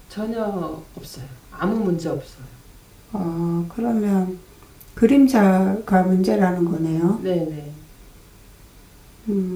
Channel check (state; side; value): identical; both; correlation 1.00